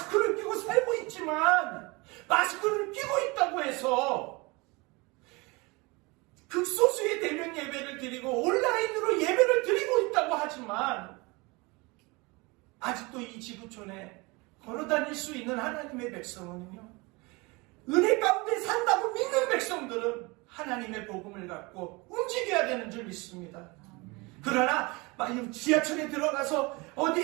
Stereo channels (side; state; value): left; quieter; 25.6 dB